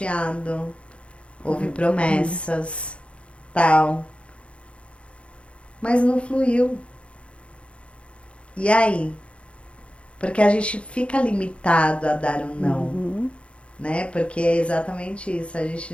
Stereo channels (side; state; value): right; late; 0.060 ms